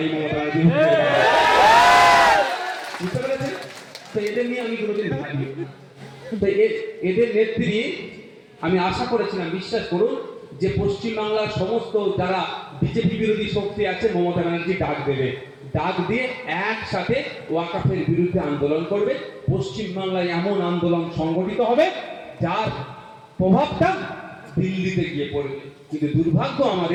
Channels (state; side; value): identical; both; correlation 1.00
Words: মমতা ব্যানার্জি। বুঝতে পেরেছেন? তো এদের নিয়ে আমি কোনোদিন ভাবি, তো এদের নেত্রী আমি আশা করেছিলাম, বিশ্বাস করুন, যে পশ্চিমবাংলার সমস্ত যারা বিজেপি বিরোধী শক্তি আছে মমতা ব্যানার্জি ডাক দেবে, ডাক দিয়ে একসাথে ওয়াকাফের বিরুদ্ধে আন্দোলন করবে। পশ্চিমবাংলায় এমন আন্দোলন সংগঠিত হবে যার প্রভাবটা দিল্লিতে গিয়ে পড়বে। কিন্তু দুর্ভাগ্য